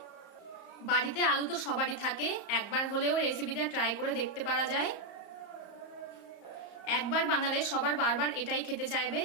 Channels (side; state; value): right; late; 34 ms